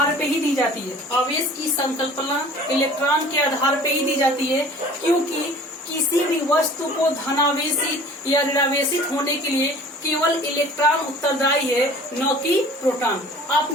पे ही दी जाती है। आवेश की संकल्पना इलेक्ट्रॉन के आधार पे ही दी जाती है, क्योंकि किसी भी वस्तु को धनावेशित या ऋणावेशित होने के लिए केवल इलेक्ट्रॉन उत्तरदायी है, न कि प्रोटॉन।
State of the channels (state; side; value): normal; both; correlation 0.46